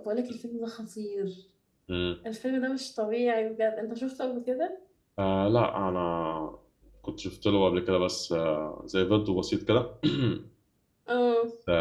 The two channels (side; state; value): both; identical; correlation 1.00